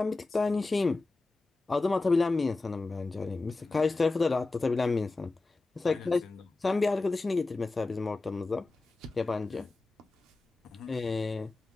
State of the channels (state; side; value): quieter; right; 3.4 dB